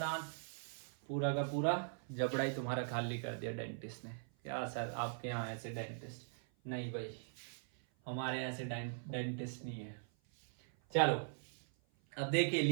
पूरा का पूरा जबड़ा ही तुम्हारा खाली कर दिया डेंटिस्ट ने. क्या सर आपके यहाँ ऐसे डेंटिस्ट? नहीं भाई, हमारे यहाँ ऐसे डेंटिस्ट नहीं है. चलो अब देखिए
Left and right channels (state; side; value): silent; left; 51 dB below the other